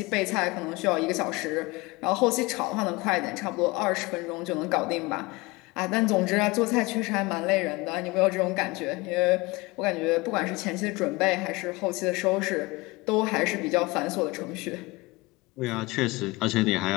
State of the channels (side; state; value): right; quieter; 23.3 dB